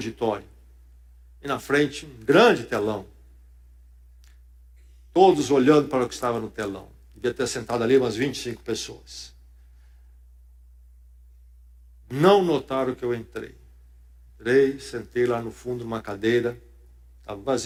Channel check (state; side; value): identical; both; correlation 1.00